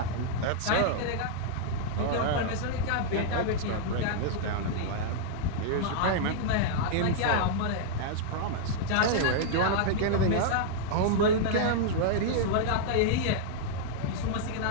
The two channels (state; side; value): different; both; correlation -0.01